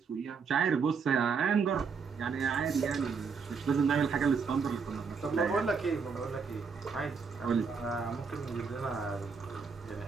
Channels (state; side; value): quieter; left; 5.5 dB